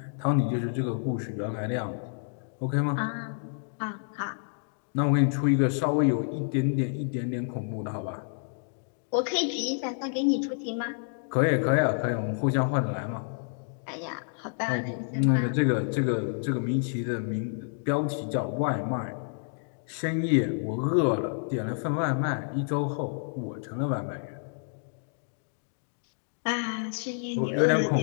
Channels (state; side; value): silent; right; digital silence